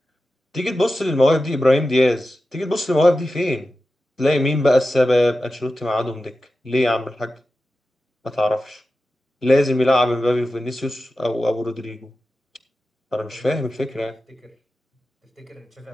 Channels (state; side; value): normal; both; correlation 0.93